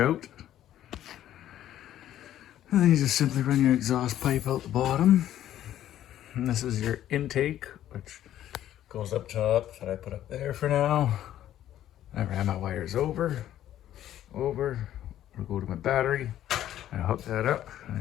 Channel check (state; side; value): quieter; right; 12.1 dB